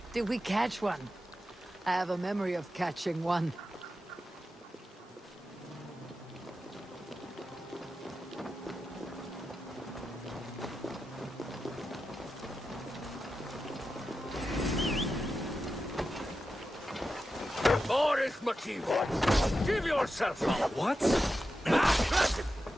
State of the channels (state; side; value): normal; both; correlation 0.91